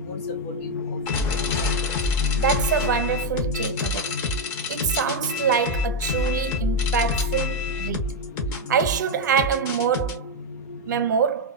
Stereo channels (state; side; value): normal; both; correlation 0.03